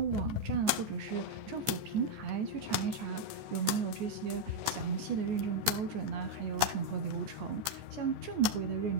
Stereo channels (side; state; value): left; late; 14 ms